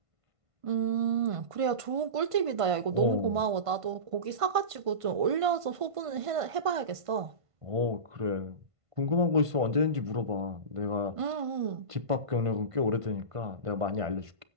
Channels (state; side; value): late; left; 1.5 ms